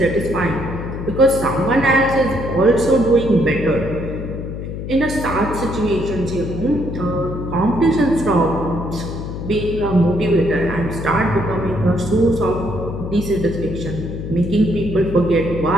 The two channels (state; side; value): noise; left; hum, 7 dB below the sound